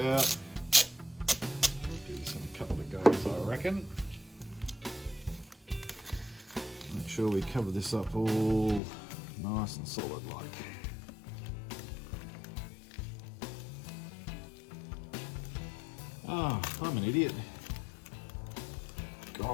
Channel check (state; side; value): drops out; right; at 8.8 s